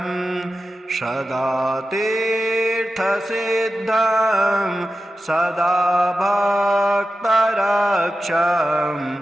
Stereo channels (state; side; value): normal; both; correlation 0.93